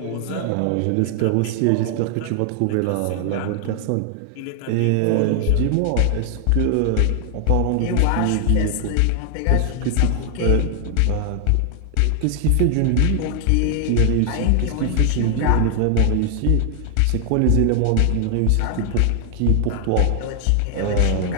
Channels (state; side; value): different; both; correlation 0.00